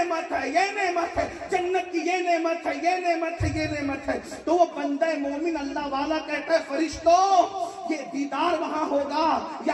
ہے، یہ نعمت ہے، جنت کی یہ نعمت ہے، یہ نعمت ہے، یہ نعمت ہے۔ تو وہ بندہ مومن اللہ والا کہتا ہے فرشتوں یہ دیدار وہاں ہوگا،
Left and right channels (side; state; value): both; identical; correlation 1.00